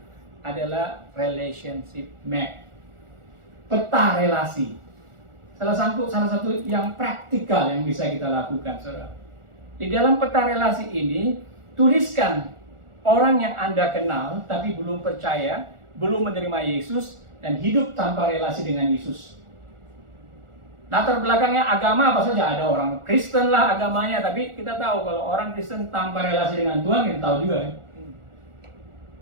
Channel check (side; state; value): left; late; 1.4 ms